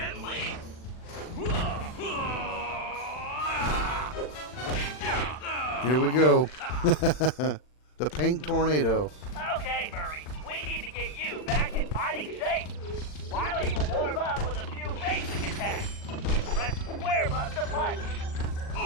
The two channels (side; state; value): right; late; 40 ms